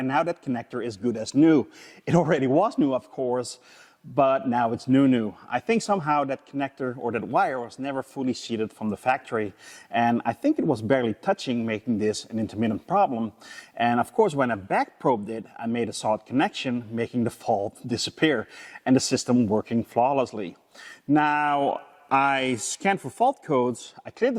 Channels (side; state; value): both; identical; correlation 1.00